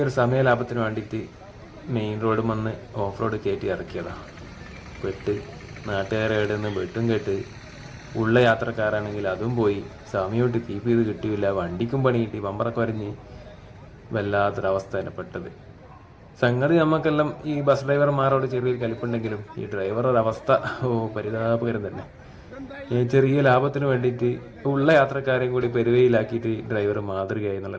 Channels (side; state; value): both; identical; correlation 1.00